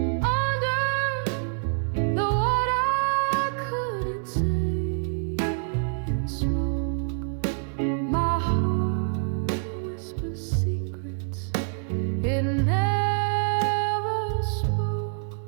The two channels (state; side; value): silent; left; digital silence